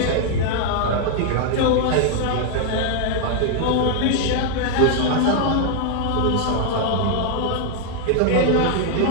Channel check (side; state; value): both; different; correlation 0.00